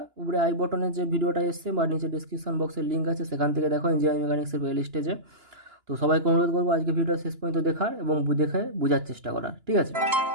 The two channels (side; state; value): left; late; 2.9 ms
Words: উপরে আই বটনের যে ভিডিওটা এসছে বা নিচে ডিসক্রিপশন বক্সের লিঙ্ক আছে সেখান থেকে দেখো, ইঞ্জিনিয়ারিং মেকানিক্সের প্লে লিস্টেজে। তো সবাইকে অনুরোধ করবো আজকে ভিডিওটা শেষ পর্যন্ত দেখার এবং দেখে বোঝার চেষ্টা করার, ঠিক আছে?